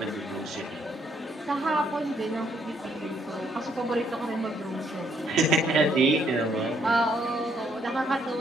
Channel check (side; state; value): both; normal; correlation 0.70